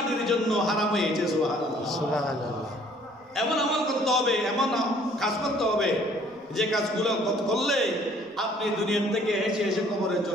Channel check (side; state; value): both; normal; correlation 0.58